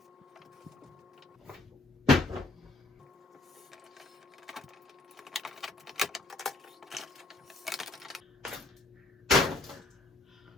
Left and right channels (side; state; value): right; quieter; 3.1 dB